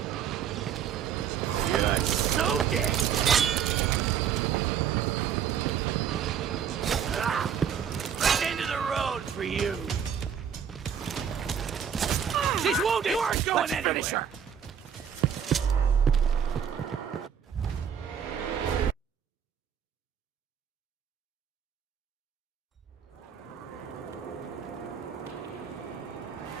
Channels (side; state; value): left; quieter; 8.1 dB